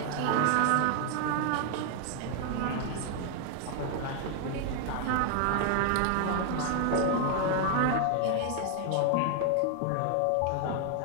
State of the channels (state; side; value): different; both; correlation 0.00